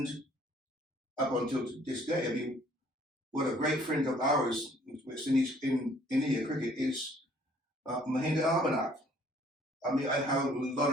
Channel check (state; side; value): normal; both; correlation 0.59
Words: up until this day, I mean, what a great friend of ours in India cricket is Mahinda Abhinav. I mean, I have a